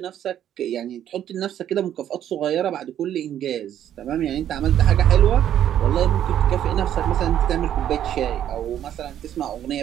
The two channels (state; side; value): quieter; left; 10.7 dB